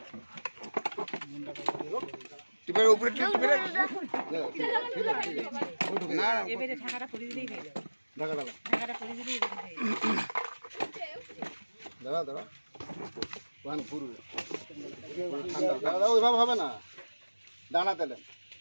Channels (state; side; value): inverted; both; correlation -1.00